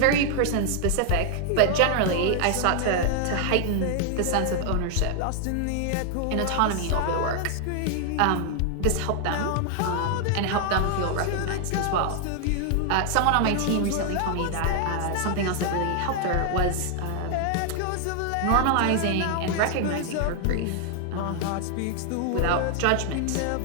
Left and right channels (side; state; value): both; different; correlation 0.00